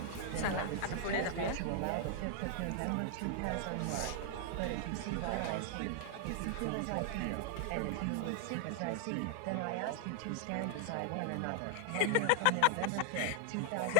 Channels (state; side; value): different; both; correlation 0.00